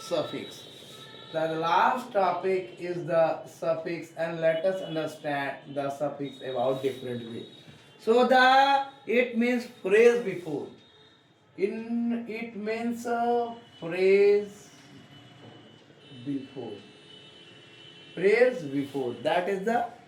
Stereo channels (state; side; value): identical; both; correlation 1.00